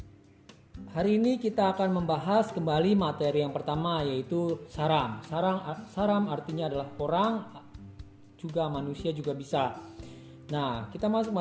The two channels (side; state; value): both; identical; correlation 1.00